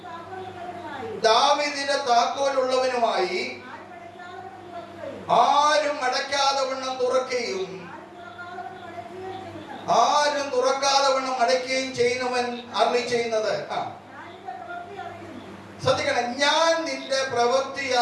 ദാവീദിന്റെ താക്കോലുള്ളവനുമായി ആരും അടയ്ക്കാതെ വണ്ണം തുറക്കുകയും ആരും തുറക്കാതെ വണ്ണം അടയ്ക്കുകയും ചെയ്യുന്നവൻ അരുളി ചെയ്യുന്നത്. ശ്രദ്ധിക്കണം, ഞാൻ നിന്റെ പ്രവൃത്തി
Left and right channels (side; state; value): both; identical; correlation 1.00